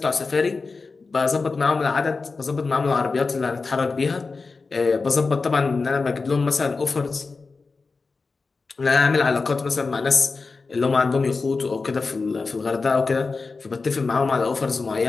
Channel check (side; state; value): right; quieter; 4.2 dB